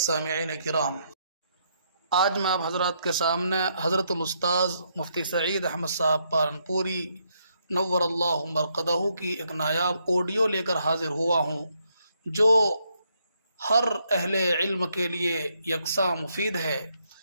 سامعین کرام، آج میں آپ حضرات کے سامنے حضرت الاستاذ مفتی سعید احمد صاحب پالنپوری نور اللہ مرقدہ کی ایک نایاب آڈیو لے کر حاضر ہوا ہوں، جو ہر اہل علم کے لیے یکساں مفید ہے۔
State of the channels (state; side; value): inverted; both; correlation -0.75